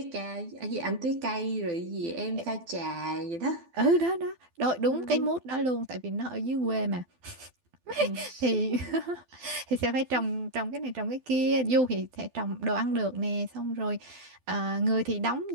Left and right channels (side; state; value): left; late; 12 ms